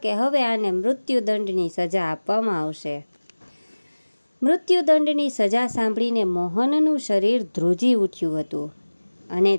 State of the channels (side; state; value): both; inverted; correlation -1.00